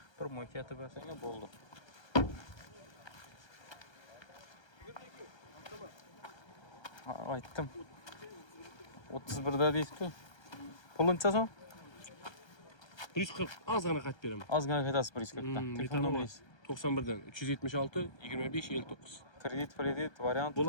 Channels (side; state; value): right; late; 1.3 ms